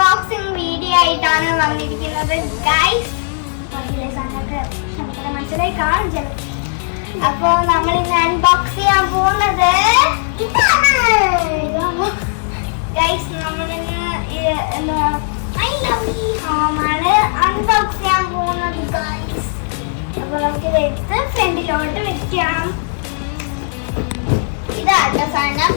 വീഡിയോ ആയിട്ടാണ് വന്നിരിക്കുന്നത് ഗൈസ്. മനസ്സിലായി കാണും ചില. അപ്പോ നമ്മൾ ഇന്ന് അൺബോക്സ് ചെയ്യാൻ പോകുന്നത് ഗൈസ്. നമ്മളിന്ന് ഐ ലവ് യു ഹോമാണ് അൺബോക്സ് ചെയ്യാൻ പോകുന്നത് ഗൈസ്. അപ്പൊ നമുക്കിത് എടുത്ത് ഫ്രണ്ടിലോട്ട് വെക്കാം. ഇതാട്ടോ സാധനം.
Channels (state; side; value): silent; right; 68 dB below the other